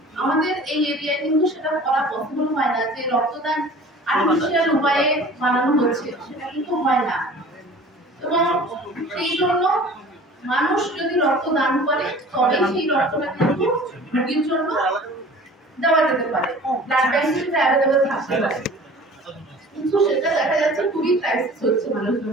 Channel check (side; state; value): both; normal; correlation 0.45